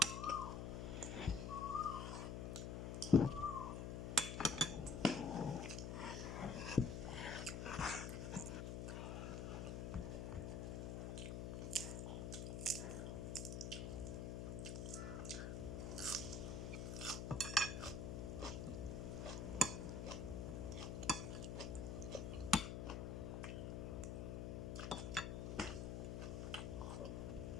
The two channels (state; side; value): noise; left; hum, 3 dB below the sound